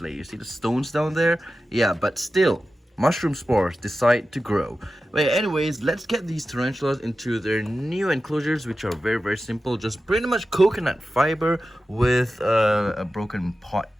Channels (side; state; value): both; normal; correlation 0.93